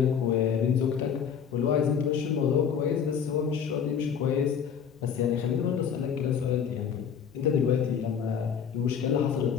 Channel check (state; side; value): quieter; right; 7.4 dB